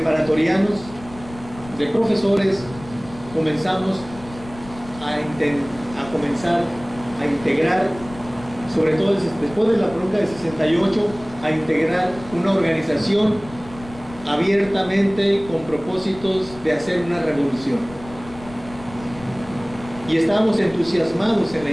de profesores, comenzamos a comenzar a integrar, sobre todo después de la bronca de 68, a integrar una organización abiertamente con propósitos de hacer una revolución. Y estábamos entusiasmados en la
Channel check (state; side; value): noise; left; rumble, 17 dB below the sound